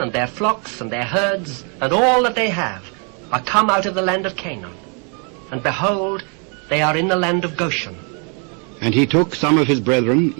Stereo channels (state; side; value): quieter; left; 38.0 dB